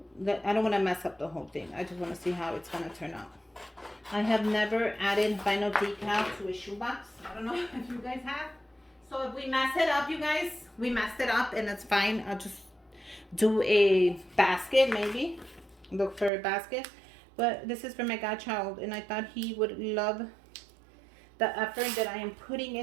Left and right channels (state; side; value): drops out; left; at 16.3 s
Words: I don't want to mess up the whole thing. I just want to see how it's gonna turn out. I have never added vinyl decal to a shoebox. I don't know if you guys have. So if we mess it up, you guys, we messed it up, and it's fine. I'll just do a basket, maybe. Look for a basket. But this is for my godchild, and I thought he would love the effort that I am putting